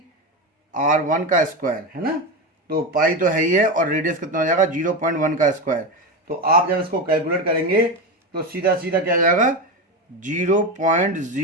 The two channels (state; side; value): normal; both; correlation 0.17